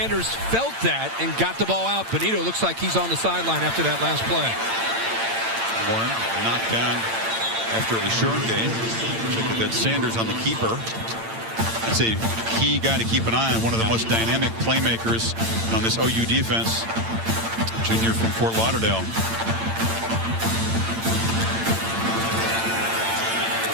felt that and got the ball out. Benito looks like he's on the sideline after that last play. Warren knocked down after a short game. Check that Sanders on the keeper. That's a key guy to keep an eye on. One of the most dynamic playmakers on this OU defense. Junior from Fort Lauderdale.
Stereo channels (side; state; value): left; late; 8.8 ms